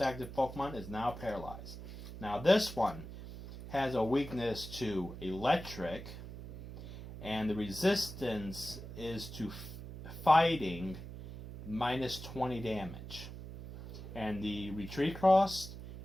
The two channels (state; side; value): noise; right; hum, 11 dB below the sound